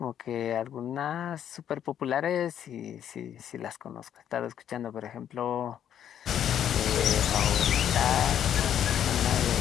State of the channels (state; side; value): quieter; right; 9.8 dB